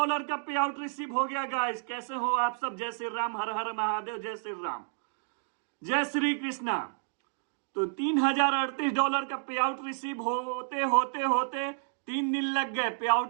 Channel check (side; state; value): left; silent; digital silence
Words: का पे out receive हो गया गाइस। कैसे हो आप सब? जय श्री राम, हर हर महादेव, जय श्री राम, जय श्री कृष्णा। तो $3038 का पे आउट रिसीव होते होते होते 3 दिन लग गए। पे